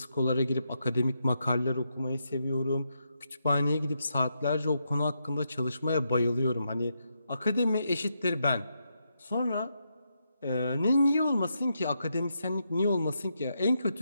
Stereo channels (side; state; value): both; inverted; correlation -0.82